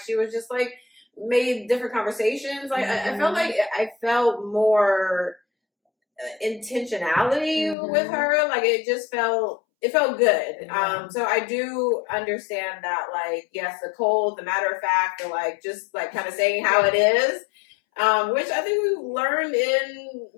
she was just, like, made different conversations. Like, I felt like I felt more intentionality with her. Like, it felt good. So I do understand that, like, yes, the cold, the matter of fact, or, like, just, like, kind of saying how it is. Which I think we've learned in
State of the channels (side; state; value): right; drops out; at 7.8 s